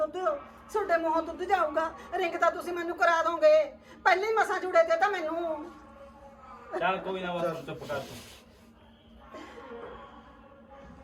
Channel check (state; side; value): identical; both; correlation 1.00